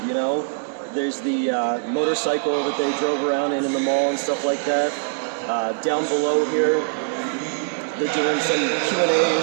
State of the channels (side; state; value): left; silent; digital silence